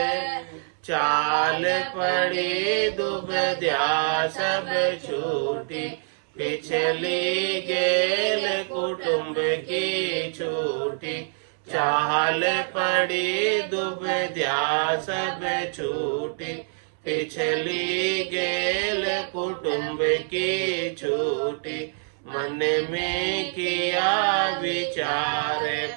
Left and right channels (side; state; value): left; silent; 61 dB below the other